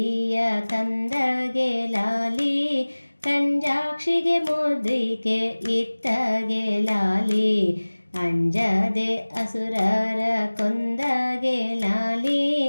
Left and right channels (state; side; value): inverted; both; correlation -1.00